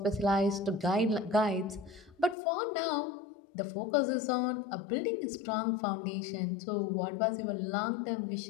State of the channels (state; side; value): drops out; right; at 2.4 s